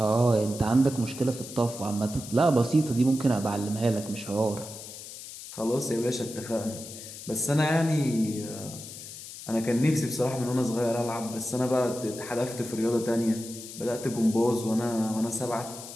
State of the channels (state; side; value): noise; left; hiss, 12 dB below the sound